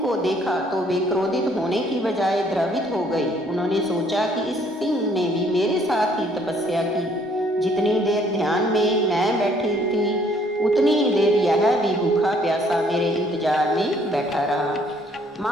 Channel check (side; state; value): both; normal; correlation 0.63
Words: को देखा, तो वे क्रोधित होने की बजाय द्रवित हो गई। उन्होंने सोचा कि इस सिंह ने भी मेरे साथ ही तपस्या की। जितनी देर ध्यान में मैं बैठी थी, उतनी ही देर यह भी भूखा प्यासा मेरे इंतजार में बैठा रहा।